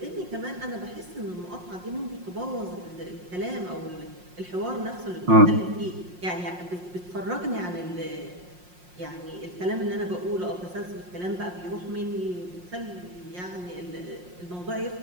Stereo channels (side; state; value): left; late; 5.6 ms